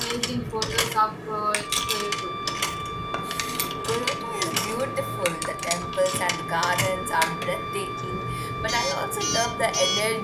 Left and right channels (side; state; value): both; identical; correlation 1.00